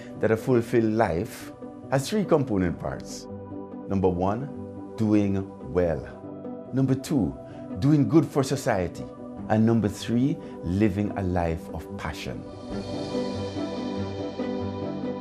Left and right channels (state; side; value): identical; both; correlation 1.00